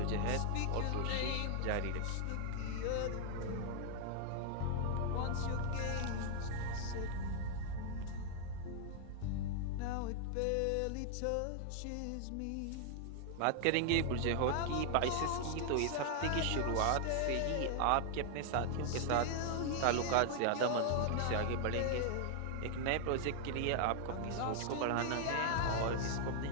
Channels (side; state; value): both; different; correlation 0.00